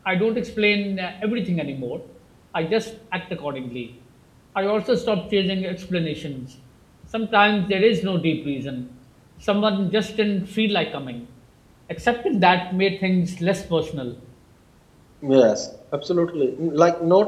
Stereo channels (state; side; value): identical; both; correlation 1.00